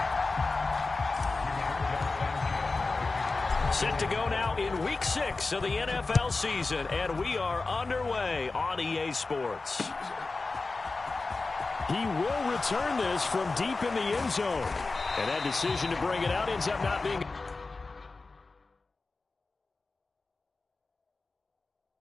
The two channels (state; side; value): quieter; right; 3.7 dB